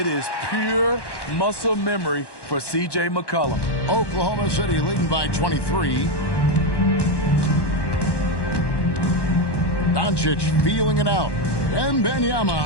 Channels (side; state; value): right; late; 1.1 ms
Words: is pure muscle memory for C.J. McCollum. Oklahoma City leading by 23. Doncic feeling it out. Wembanyama